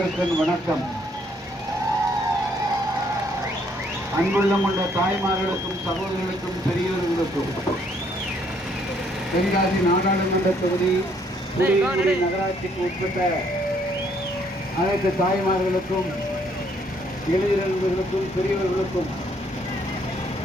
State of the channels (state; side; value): normal; both; correlation 0.67